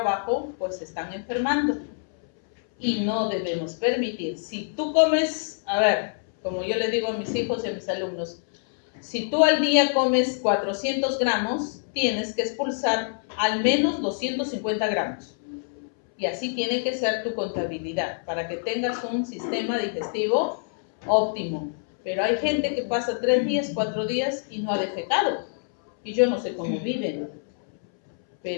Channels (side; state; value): right; silent; 61 dB below the other